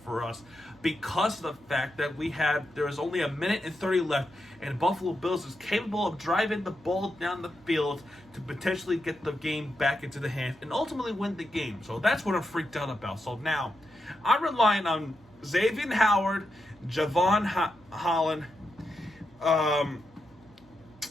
for us, because of the fact that there was only 1:30 left, and Buffalo Bills is capable of driving the ball down the field to potentially get the game back into the hands and ultimately win the game. So that's what I'm freaked out about. So now I'm relying on Xavier Howard, Javon Holland,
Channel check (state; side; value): normal; both; correlation 0.86